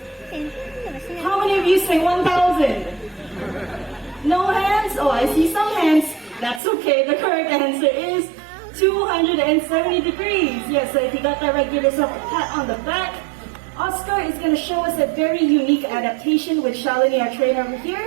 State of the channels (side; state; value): left; drops out; at 6.6 s